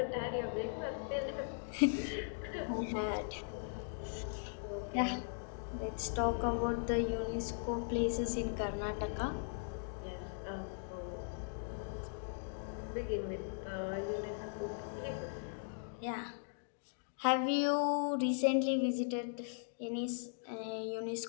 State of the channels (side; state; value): right; silent; digital silence